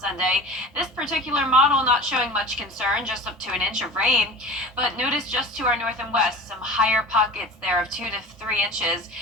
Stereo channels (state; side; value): normal; both; correlation 0.38